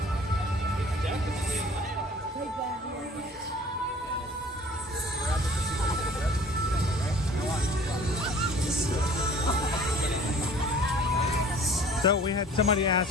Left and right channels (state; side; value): normal; both; correlation 0.49